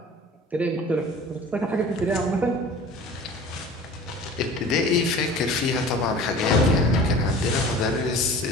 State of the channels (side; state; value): both; normal; correlation 0.42